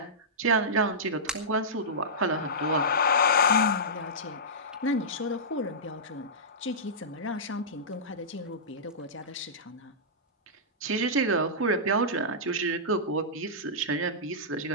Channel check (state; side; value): normal; both; correlation -0.16